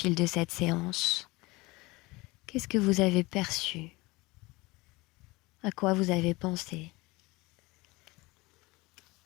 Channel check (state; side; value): quieter; right; 22.8 dB